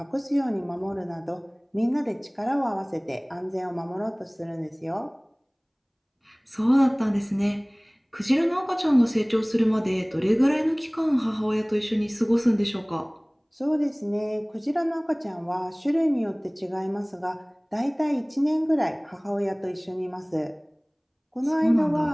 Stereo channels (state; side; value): identical; both; correlation 1.00